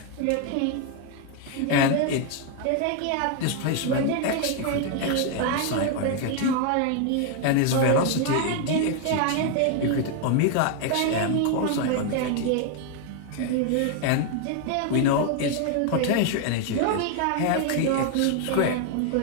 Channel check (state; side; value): different; both; correlation 0.01